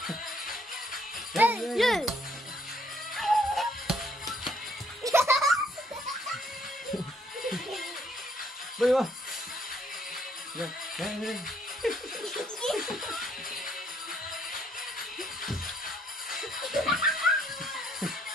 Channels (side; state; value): both; normal; correlation 0.68